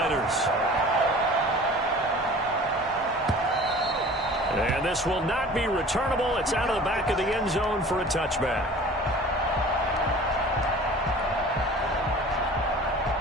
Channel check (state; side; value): normal; both; correlation 0.44